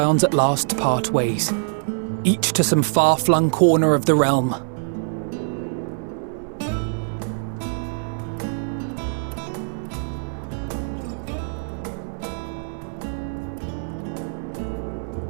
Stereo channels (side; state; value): left; silent; digital silence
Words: at last part ways, each to some far-flung corner of the realm.